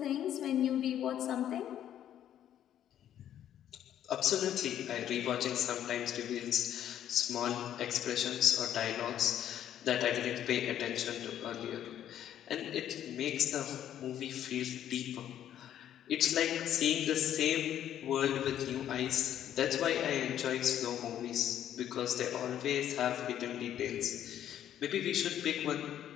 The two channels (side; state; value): right; quieter; 10.8 dB